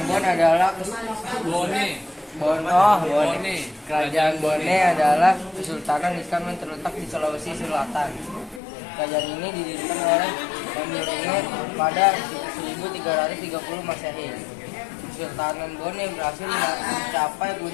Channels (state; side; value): drops out; right; at 8.6 s